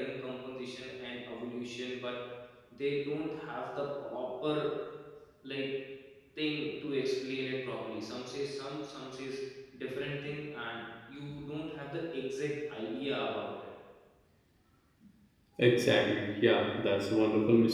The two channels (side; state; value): both; identical; correlation 1.00